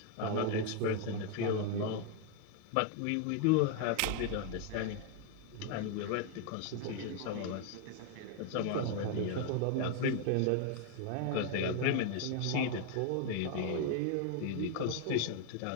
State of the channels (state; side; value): different; both; correlation 0.01